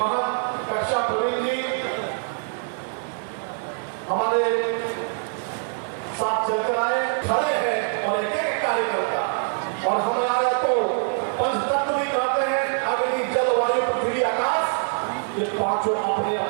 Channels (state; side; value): silent; left; 62 dB below the other